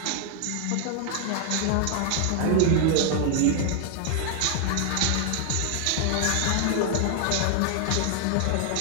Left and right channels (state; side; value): different; both; correlation 0.00